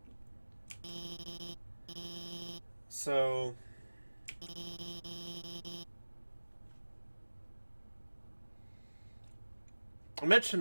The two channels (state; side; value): inverted; both; correlation -1.00